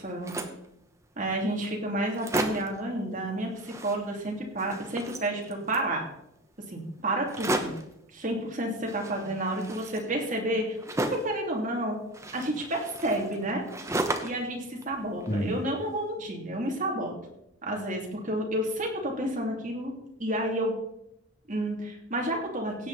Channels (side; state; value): both; normal; correlation 0.30